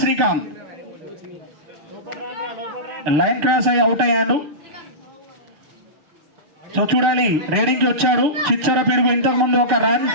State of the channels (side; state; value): left; late; 6.7 ms